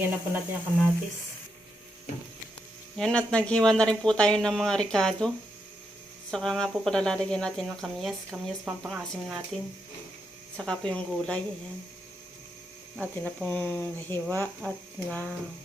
na po natin yung kamatis. Yan, at naghiwa na rin po tayo ng mga ricado. Saka nga po pala lalagyan natin ng kamyas. Kamyas pang-asim natin. Saka po yung gulay. Ayan. Atin na pong nahiwa at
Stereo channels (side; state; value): both; normal; correlation 0.82